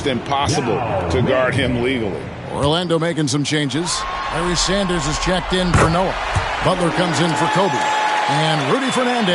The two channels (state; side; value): identical; both; correlation 1.00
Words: impossible to guard him legally. Orlando making some changes. Larry Sanders is checked in for Noah. Butler comes in for Kobe. And Rudy